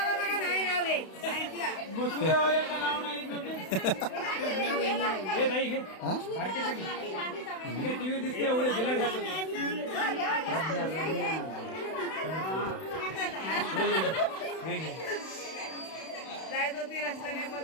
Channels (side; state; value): right; late; 32 ms